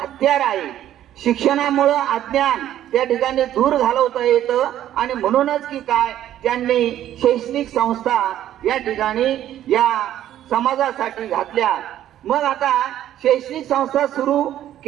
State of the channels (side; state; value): left; quieter; 12.0 dB